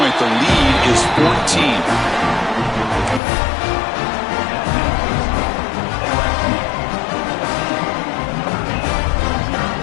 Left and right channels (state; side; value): drops out; right; at 3.2 s